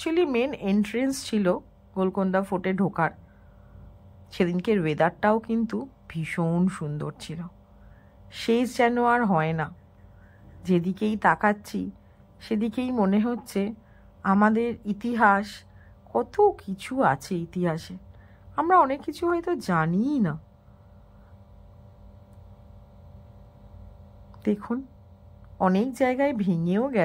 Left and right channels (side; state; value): both; identical; correlation 1.00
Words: মেন এন্ট্রেন্স ছিল গোলকোন্ডা ফোর্টে ঢোকার। সেদিনকের ওয়েদারটাও কিন্তু ভীষণ সুন্দর ছিল, শেষ যেন আর হয় না। যেদিকেই তাকাচ্ছি সেদিকেই মনে হচ্ছে আমাদের ইতিহাস, কত কিছু আছে ইতিহাসে, আমরা অনেক কিছু হয়তো জানিই না। দেখুন অনেক জায়গায় ভেঙেও